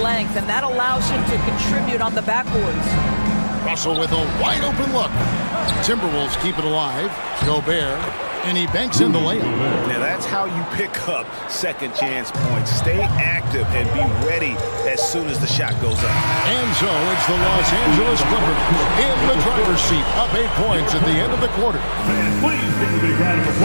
length, and that allows him to contribute on the backboards. Russell with a wide open look. Timberwolves keep it alive. Gobert. And he banks in the layup. Now that's how you pick up second chance points. Stay active and be ready as soon as the shot goes up. And so it's the Los Angeles Clippers in the driver's seat, up 8 points at the end of the quarter. Fans, please give a big round of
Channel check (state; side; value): inverted; both; correlation -1.00